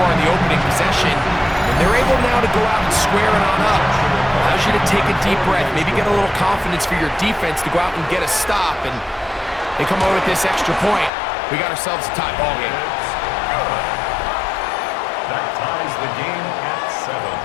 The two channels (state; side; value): drops out; right; at 11.1 s